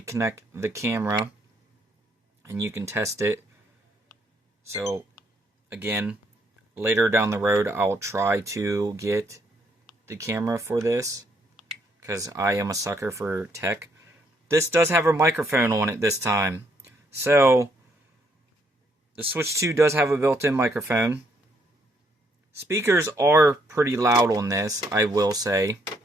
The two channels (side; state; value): both; normal; correlation 0.71